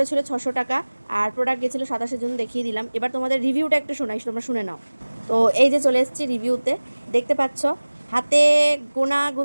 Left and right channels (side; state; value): both; inverted; correlation -1.00